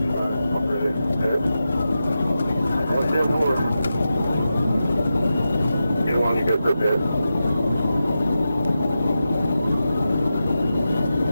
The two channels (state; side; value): inverted; both; correlation -0.90